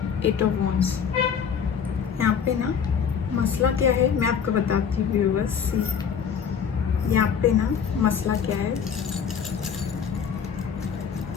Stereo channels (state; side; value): quieter; right; 7.3 dB